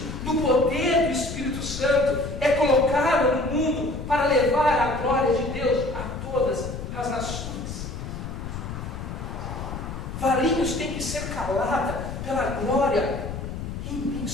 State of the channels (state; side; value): noise; left; rumble, 7 dB below the sound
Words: no poder do Espírito Santo, é colocada no mundo para levar a glória de Deus a todas as nações. Varinhos tem que ser calada pela glória